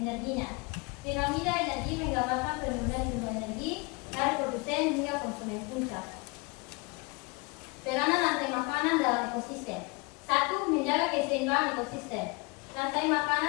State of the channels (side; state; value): right; quieter; 28.5 dB